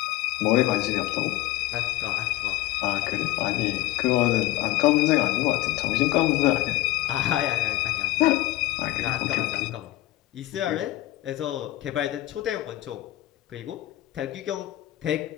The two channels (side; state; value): right; quieter; 16.4 dB